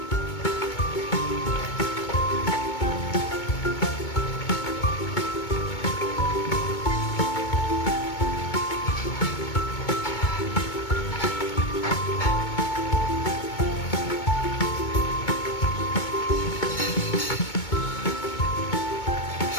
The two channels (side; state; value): right; late; 2.2 ms